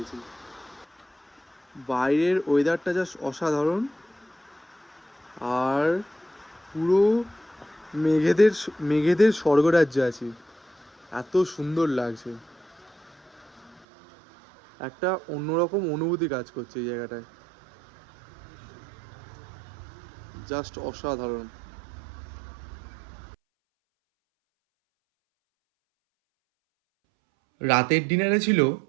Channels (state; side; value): drops out; left; at 13.9 s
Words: বাইরের ওয়েদারটা জাস্ট অসাধারণ, আর পুরো মেঘেদের স্বর্গরাজ্যে আছি, এত সুন্দর লাগছে। একটা অন্যরকম অনুভূতি কাজ করছে এই জায়গাটায়, জাস্ট অসাধারণ। রাতের ডিনারে ছিল